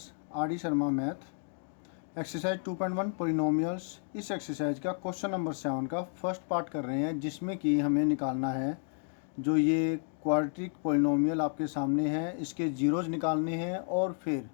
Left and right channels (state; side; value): silent; right; digital silence